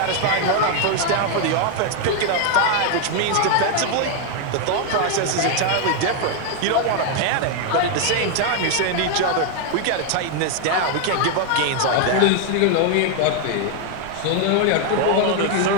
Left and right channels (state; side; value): different; both; correlation 0.01